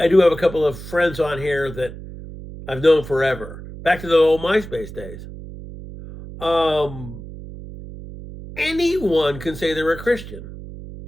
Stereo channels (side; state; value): right; noise; hum, 13 dB below the sound